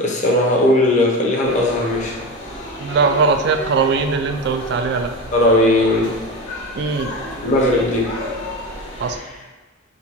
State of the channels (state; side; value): normal; both; correlation 0.23